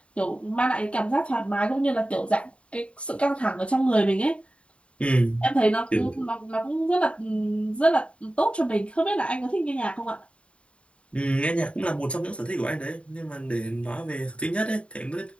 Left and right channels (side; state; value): right; late; 0.061 ms